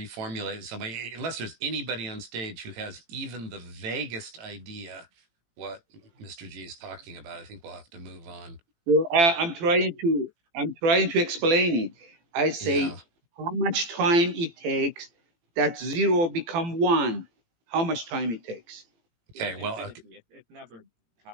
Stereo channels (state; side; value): late; left; 18 ms